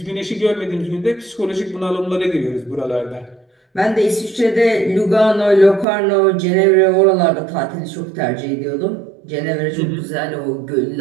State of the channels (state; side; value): drops out; left; at 5.9 s